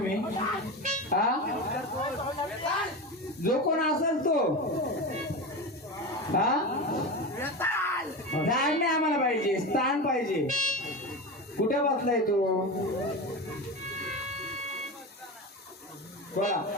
हा, जो कोण असेल तो हा झाड नाही आम्हाला पाहिजे, स्थान पाहिजे. कुठे बसलाय तो? बोला.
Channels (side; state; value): both; normal; correlation 0.24